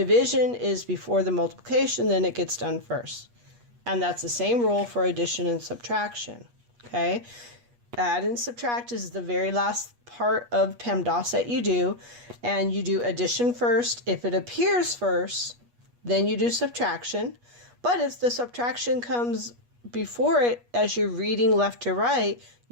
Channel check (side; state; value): left; late; 8.3 ms